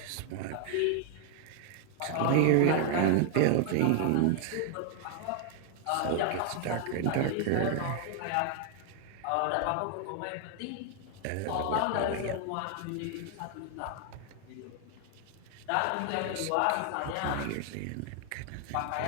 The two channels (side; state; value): both; different; correlation 0.00